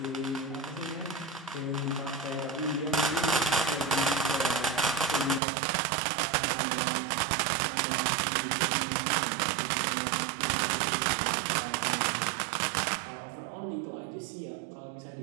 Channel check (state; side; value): drops out; left; at 5.4 s